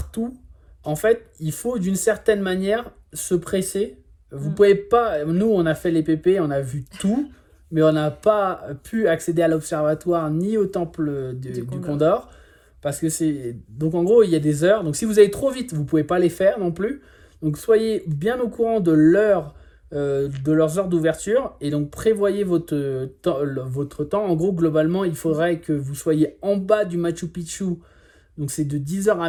tout, en fait, il faut d'une certaine manière se presser. Vous pouvez pas... Nous, on a fait les PP, on a vu tout, mais on n'a pas pu accéder à l'observatoire ni au temple du Condor. Parce que c'est... Donc, en gros, il y a des heures. Donc, si vous allez trop vite, vous ne pouvez pas les faire non plus. Donc, soyez bien au courant de leurs heures d'ouverture. Et donc, prévoyez votre temps. En gros, globalement, il faudrait que vous soyez en bas du Machu Picchu. Donc, c'est de 10h à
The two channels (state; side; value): identical; both; correlation 1.00